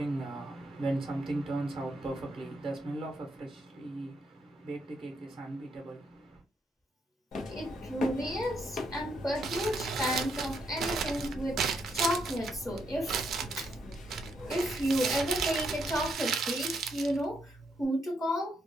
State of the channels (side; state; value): both; normal; correlation 0.77